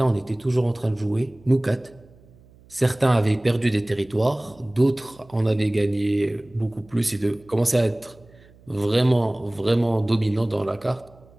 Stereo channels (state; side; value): noise; right; hum, 26 dB below the sound